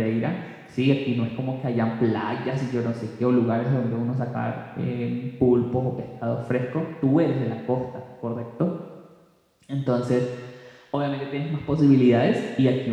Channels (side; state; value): both; identical; correlation 1.00